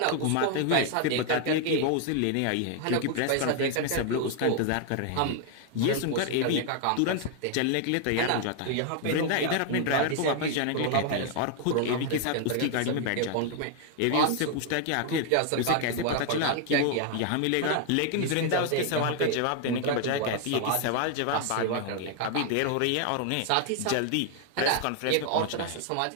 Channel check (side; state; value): both; different; correlation 0.00